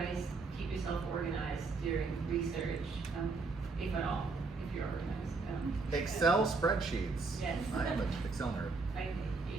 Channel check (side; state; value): left; quieter; 4.0 dB